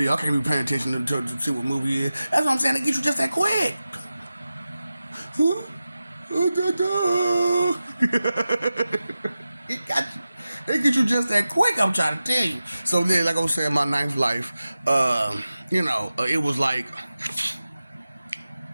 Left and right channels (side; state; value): both; inverted; correlation -0.94